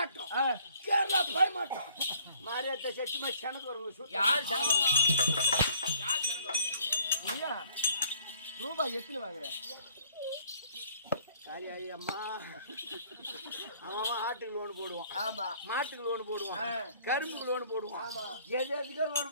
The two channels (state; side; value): inverted; both; correlation -0.58